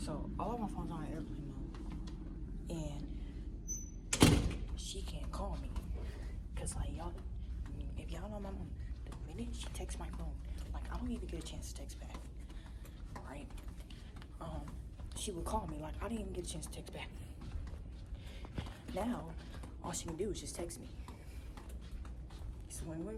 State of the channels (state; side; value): identical; both; correlation 1.00